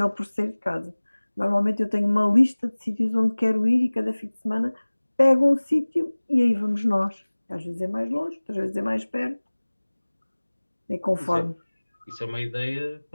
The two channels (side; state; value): both; inverted; correlation -1.00